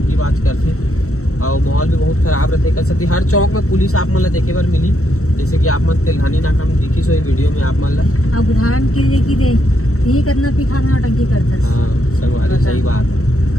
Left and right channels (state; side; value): late; right; 0.64 ms